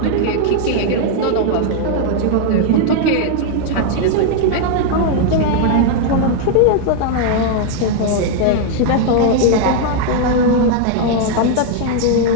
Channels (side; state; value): both; different; correlation 0.00